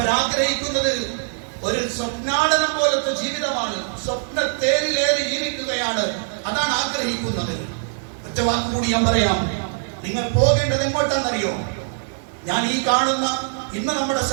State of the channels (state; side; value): silent; left; 64 dB below the other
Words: ഒരു സ്വപ്നാടനം പോലത്തെ ജീവിതമാണ്, സ്വപ്ന തേരിലേറി ജീവിക്കുകയാണ്, അതാണ് ആഗ്രഹിക്കുന്നത്. ഒറ്റ വാക്ക് കൂടി ഞാൻ പറയാം. നിങ്ങൾ പോകേണ്ടത് എങ്ങോട്ടാണെന്നറിയോ? ഞാൻ ഈ കാണുന്ന ഇന്ന് നമ്മുടെ